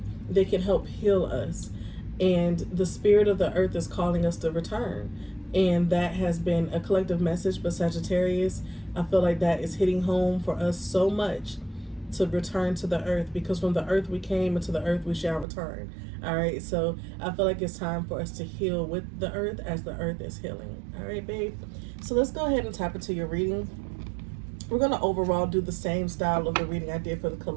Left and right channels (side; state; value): left; drops out; at 15.5 s